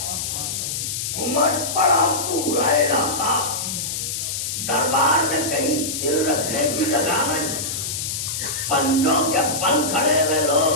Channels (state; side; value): noise; left; hiss, 3 dB below the sound